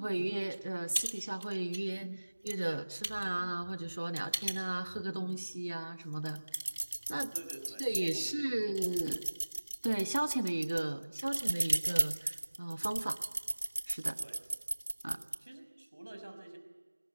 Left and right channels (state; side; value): inverted; both; correlation -1.00